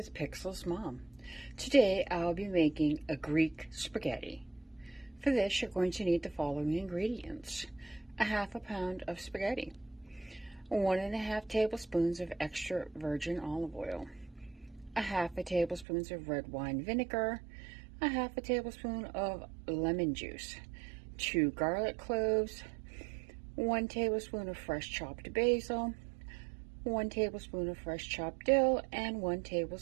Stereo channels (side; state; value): left; drops out; at 15.9 s